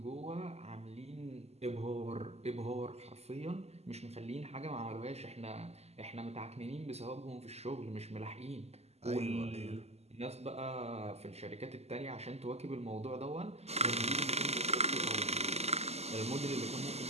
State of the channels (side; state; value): left; late; 0.30 ms